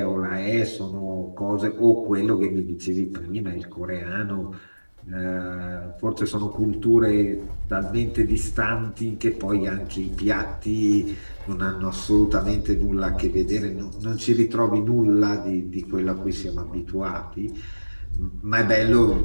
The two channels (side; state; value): both; inverted; correlation -1.00